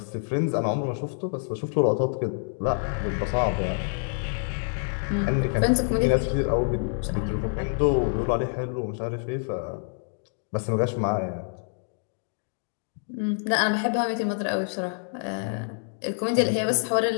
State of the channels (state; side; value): silent; right; digital silence